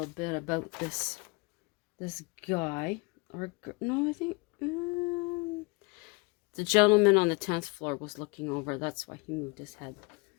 bit about this guy. Or no, I think the gentleman on the 10th floor was looking over. That's why he moved his head.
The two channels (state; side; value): quieter; right; 28.0 dB